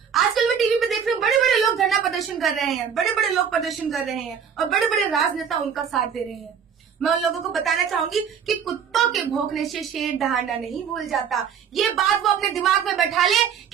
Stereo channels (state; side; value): quieter; left; 7.4 dB